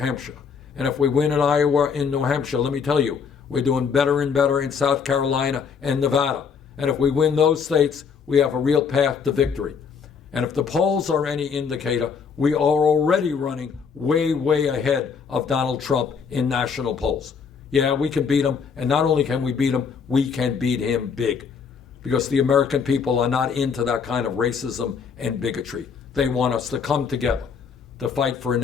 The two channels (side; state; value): right; quieter; 6.2 dB